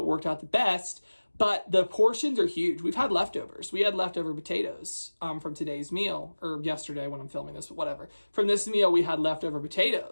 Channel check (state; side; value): inverted; both; correlation -1.00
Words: worked out the best. But the portions are huge. We've had leftovers. We had leftover potatoes from today's meal, or yesterday when I'm filming this, but whatever. From this meal, we had leftover